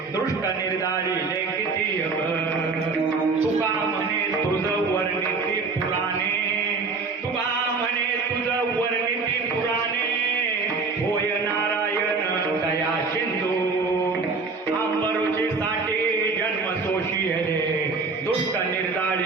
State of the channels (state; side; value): quieter; left; 4.3 dB